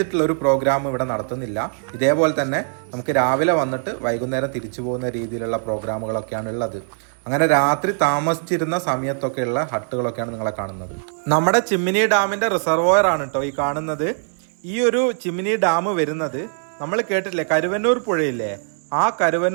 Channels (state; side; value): silent; left; digital silence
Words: ഒരു പ്രോഗ്രാം ഇവിടെ നടത്തുന്നില്ല. ഇതേപോലെ തന്നെ നമുക്ക് രാവിലെ വന്നിട്ട് വൈകുന്നേരം തിരിച്ചു പോകുന്ന രീതിയിലുള്ള പ്രോഗ്രാമുകളൊക്കെയാണ് ഉള്ളത്. അങ്ങനെ രാത്രി താമസിച്ചിരുന്ന സമയത്തൊക്കെയുള്ള ഹട്ടുകളൊക്കെയാണ് നിങ്ങളെ കാണുന്നത്. നമ്മുടെ ചിമ്മിനി ഡാമിന്റെ റിസർവോയർ ആണ് കേട്ടോ ഈ കാണുന്നത്. ഈ ഒരു ചിമ്മിനി ഡാം വരുന്നത് നമ്മൾ കേട്ടില്ലേ, കരുവന്നൂർ പുഴയില്ലേ, ആ